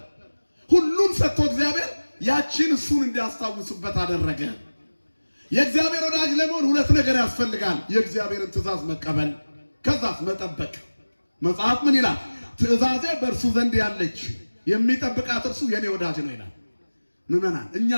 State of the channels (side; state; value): both; inverted; correlation -1.00